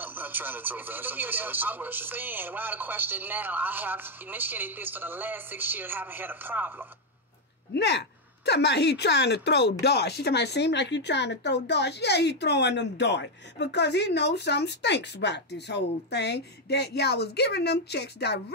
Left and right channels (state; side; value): normal; both; correlation 0.02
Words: I'm not trying to throw darts. I'm just saying, why the question now? I have initiated this for the last 6 years, haven't had a problem. Now, talking about he trying to throw darts. She talking about seem like you trying to throw darts. Yeah, he throwing them darts. Because he knows something stinks about this whole thing. That y'all was giving them checks